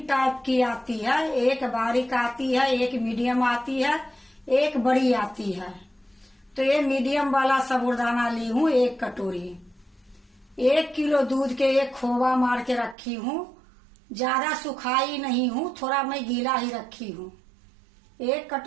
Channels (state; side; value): drops out; left; at 13.0 s